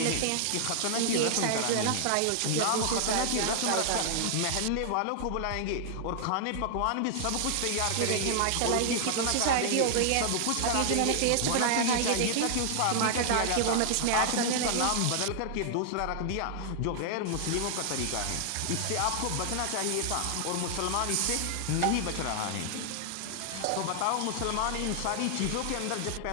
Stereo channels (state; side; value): different; both; correlation 0.00